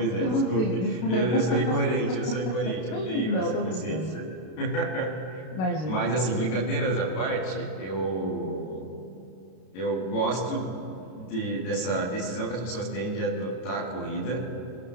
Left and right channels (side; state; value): right; late; 32 ms